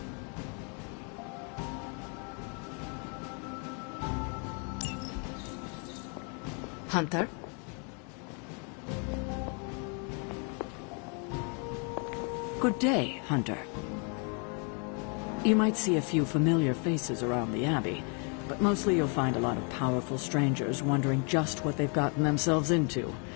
Hunter? Good day, Hunter. You might see a few familiar faces around the Abbey, but mostly you'll find a lot of powerful strangers wondering just what they've gotten themselves into.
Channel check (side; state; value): right; quieter; 37.7 dB